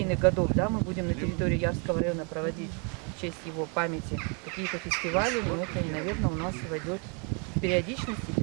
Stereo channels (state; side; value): quieter; left; 35.9 dB